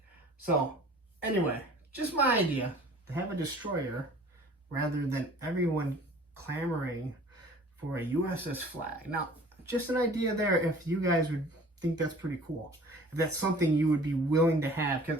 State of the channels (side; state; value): both; normal; correlation 0.47